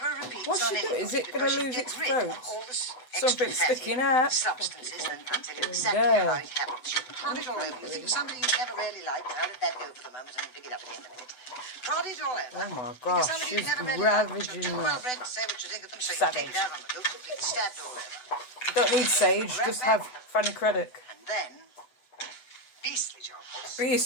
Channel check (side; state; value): right; late; 8.0 ms